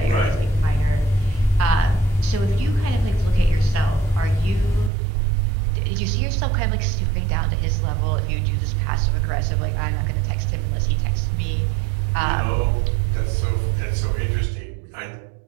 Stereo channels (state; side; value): drops out; left; at 4.9 s